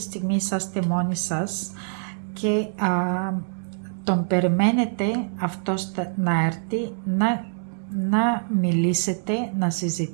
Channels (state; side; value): silent; left; 62 dB below the other